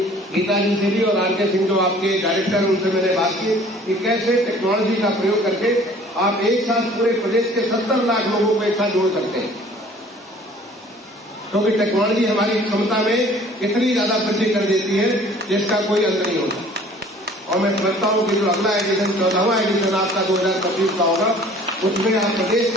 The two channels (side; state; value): both; normal; correlation 0.52